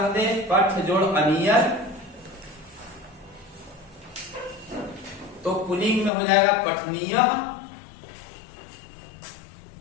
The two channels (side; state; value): right; drops out; at 6.1 s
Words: दें, पठ जोड़ अनियर, तो पुल्लिंग में हो जाएगा पठनीय,